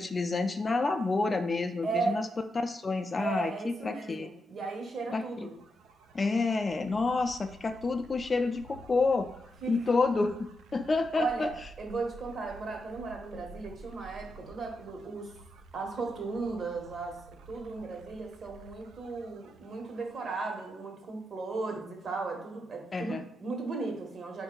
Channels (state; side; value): normal; both; correlation 0.85